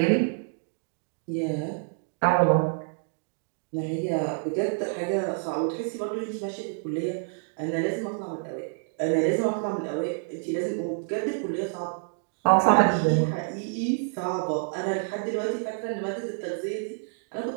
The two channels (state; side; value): silent; left; 59 dB below the other